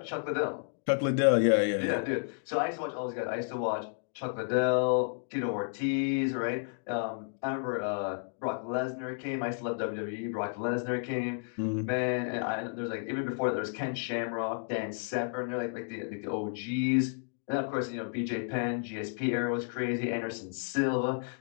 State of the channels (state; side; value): silent; right; digital silence